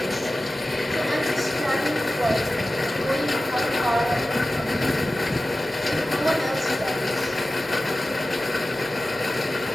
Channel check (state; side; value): normal; both; correlation 0.95